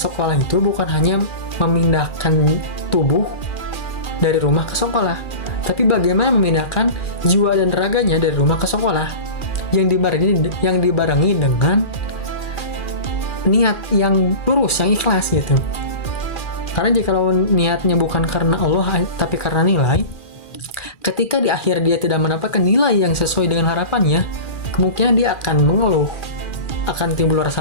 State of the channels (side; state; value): right; late; 2.4 ms